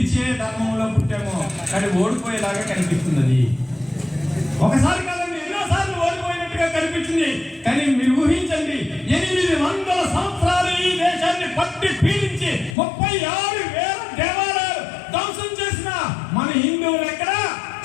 ధర్మంలో పుట్టామో, కానీ ఓడిపోయేలాగా కనిపిస్తుంది. ఒకసారి కాదండి, ఎన్నోసార్లు ఓడిపోయినట్టుగా కనిపించింది. కానీ మీరు ఊహించండి, 800 సంవత్సరాలు ఈ దేశాన్ని పట్టి పీడించి 36,000 దేవాలయాలు ధ్వంసం చేసిన మన హిందువులు ఎక్కడ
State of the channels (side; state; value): right; drops out; at 12.8 s